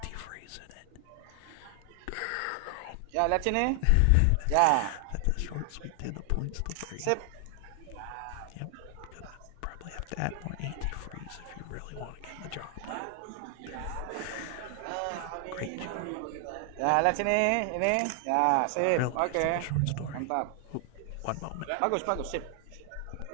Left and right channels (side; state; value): both; different; correlation 0.00